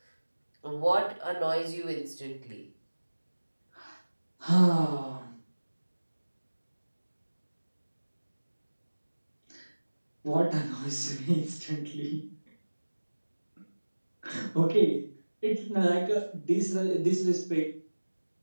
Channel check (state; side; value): inverted; both; correlation -1.00